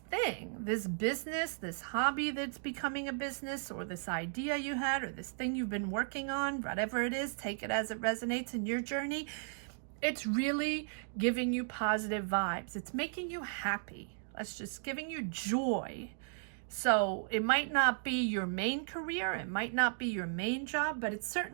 this business, this hobby that's becoming a business, or this idea you had, or this thing you've been working on, whatever it is, take it as it resonates in your journey. It's really giving you positive vibes. It's making you happy. It's just giving you joy. So it might not be your main career, it might not be your main job, but it's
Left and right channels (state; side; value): silent; left; digital silence